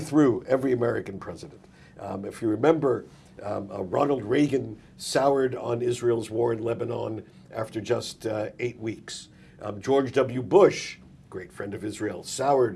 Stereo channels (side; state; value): both; identical; correlation 1.00